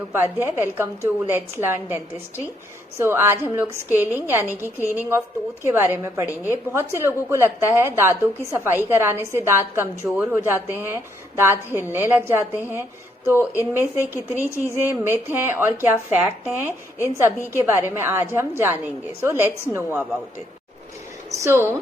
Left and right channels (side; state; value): both; normal; correlation 0.72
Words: Welcome to let's learn dentistry. आज हम लोग scaling यानी कि क्लीनिंग ऑफ टूथ के बारे में पढ़ेंगे। बहुत से लोगों को लगता है दांतों की सफाई कराने से दांत कमजोर हो जाते हैं, दांत हिलने लग जाते हैं। तो इनमें से कितनी चीजें मिथ हैं और क्या फैक्ट हैं, इन सभी के बारे में आज हम जानेंगे। So let's know about it.